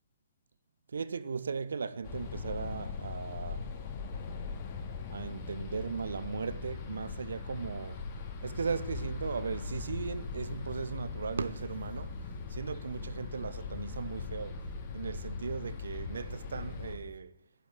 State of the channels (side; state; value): both; inverted; correlation -0.71